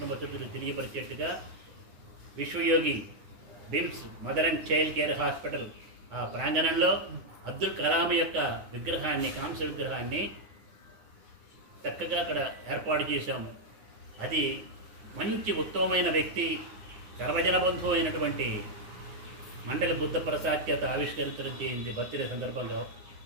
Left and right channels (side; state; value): left; late; 9.8 ms